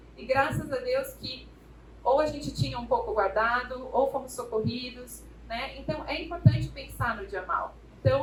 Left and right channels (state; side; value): identical; both; correlation 1.00